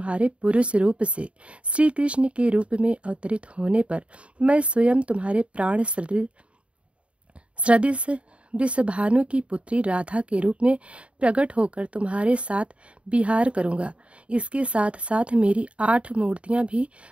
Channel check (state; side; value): late; left; 0.061 ms